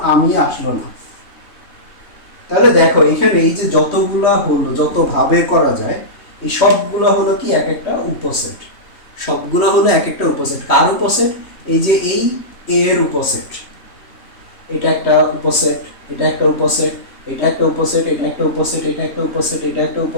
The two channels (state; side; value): late; right; 3.2 ms